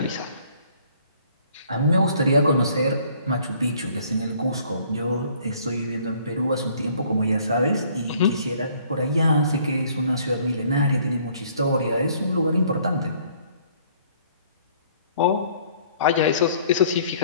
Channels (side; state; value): both; inverted; correlation -0.60